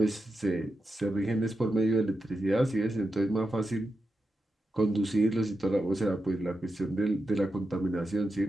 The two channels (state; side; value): normal; both; correlation 0.88